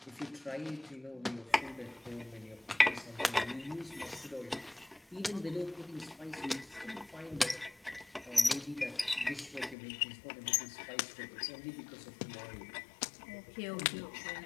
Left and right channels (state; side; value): drops out; right; at 9.8 s